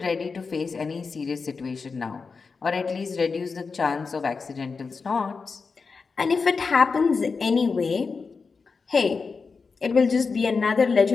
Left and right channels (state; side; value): quieter; right; 4.8 dB